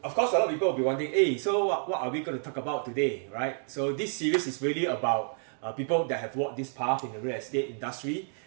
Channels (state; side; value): silent; left; 58 dB below the other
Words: of course, a lot of people will be wondering, hey, so what are we going to talk about today, right? So this series is really about people that have walked this path in the real estate industry,